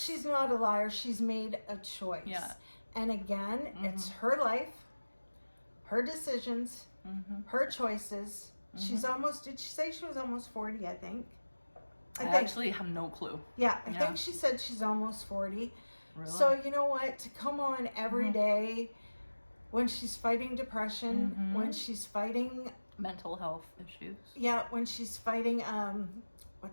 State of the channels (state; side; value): inverted; both; correlation -1.00